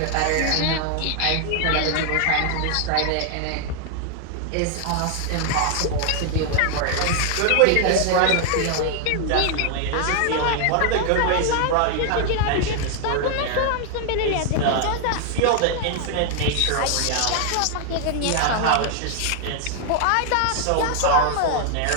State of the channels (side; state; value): both; different; correlation 0.00